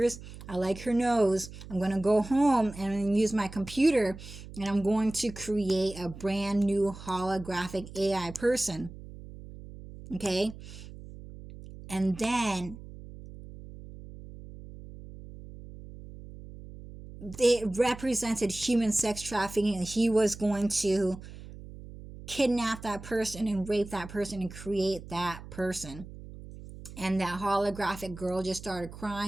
I like her nose. I'm gonna go home and use my computer, and I'm going to create a brand new holographic AI person. Okay, and then they represented human sex trafficking, and he was going to kidnap that person and rape that person and create that person. And that holographic girl just started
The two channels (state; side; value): noise; right; hum, 15 dB below the sound